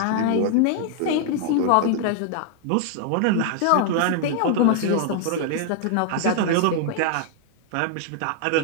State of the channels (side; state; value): both; different; correlation 0.00